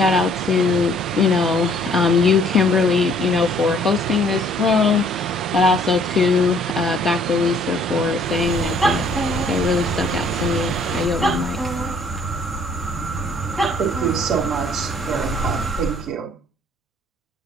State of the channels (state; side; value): normal; both; correlation 0.60